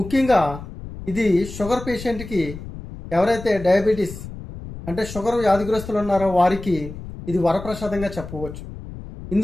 ఇది షుగర్ పేషెంట్కి, ఎవరైతే డయాబెటీస్ అంటే షుగర్ వ్యాధిగ్రస్తులు ఉన్నారో వారికి ఇది వరప్రసాదంగా చెప్పవచ్చు.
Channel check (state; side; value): noise; left; rumble, 12 dB below the sound